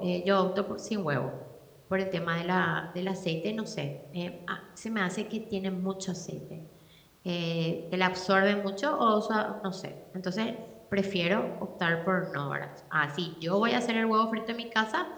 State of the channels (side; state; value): both; identical; correlation 1.00